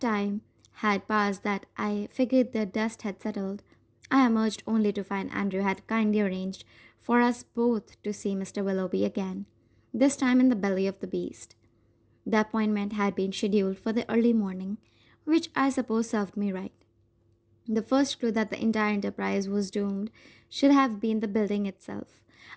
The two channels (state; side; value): identical; both; correlation 1.00